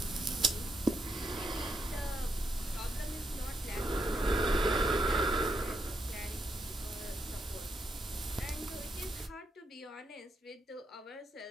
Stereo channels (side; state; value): both; normal; correlation 0.80